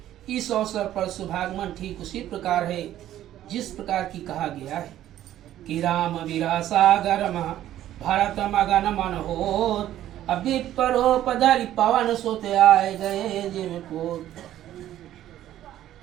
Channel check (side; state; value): left; quieter; 12.6 dB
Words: इस अवसर पर शुभागमन ठीक उसी प्रकार है जिस प्रकार की कहा गया है कि राम वीरा सागर भरत मगन मन होत। अभी परोपधरि पवन सुत आए गए जिम पोत।